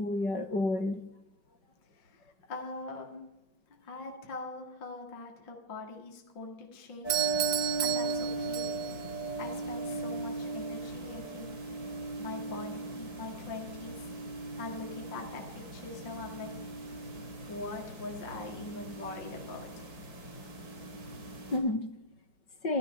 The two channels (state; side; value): late; right; 4.6 ms